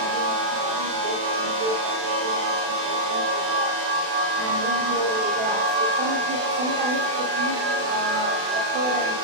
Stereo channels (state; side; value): late; left; 36 ms